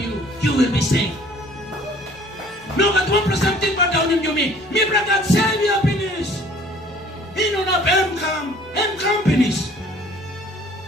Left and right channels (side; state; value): both; normal; correlation 0.54